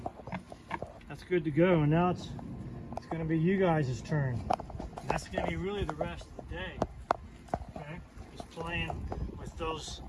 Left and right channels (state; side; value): identical; both; correlation 1.00